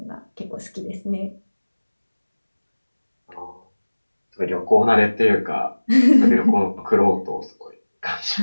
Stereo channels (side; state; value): both; inverted; correlation -1.00